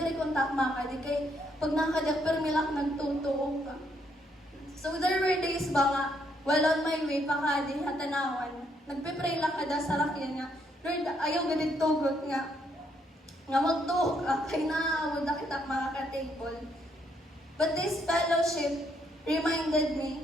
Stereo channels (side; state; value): both; normal; correlation 0.73